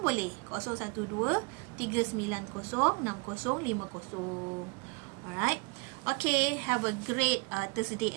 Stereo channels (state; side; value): quieter; left; 29.2 dB